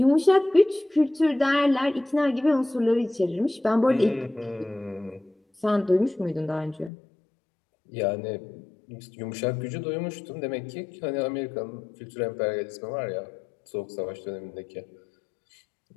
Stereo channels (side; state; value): right; drops out; at 6.9 s